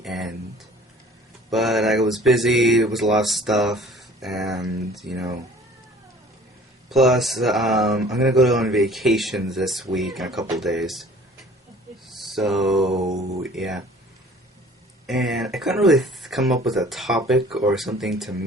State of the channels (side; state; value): both; normal; correlation 0.50